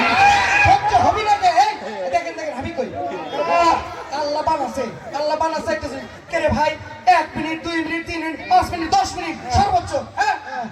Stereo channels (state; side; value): identical; both; correlation 1.00